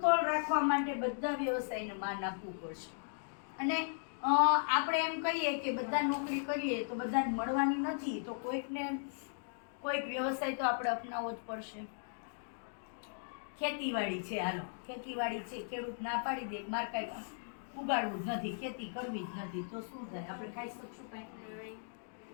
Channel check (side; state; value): right; silent; digital silence